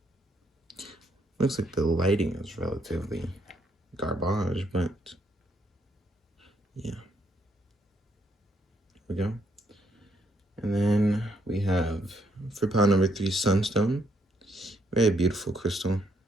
Looks like the lighting is relatively garbage, but yeah. Here we go. And then we have, for pile number 3, sunstone. Very beautiful crystal.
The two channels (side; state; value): both; normal; correlation 0.74